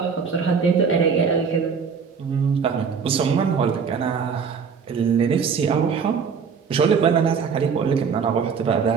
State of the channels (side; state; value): left; quieter; 6.1 dB